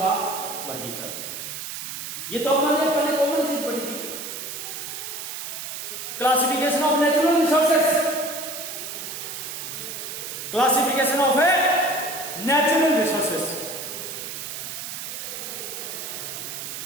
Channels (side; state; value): right; noise; hiss, 7 dB below the sound